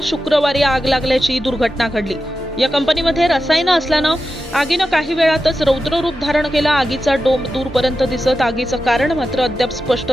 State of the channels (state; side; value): normal; both; correlation 0.91